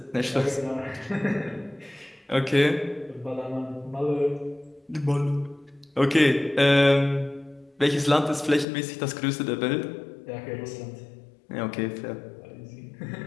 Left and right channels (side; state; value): right; drops out; at 8.7 s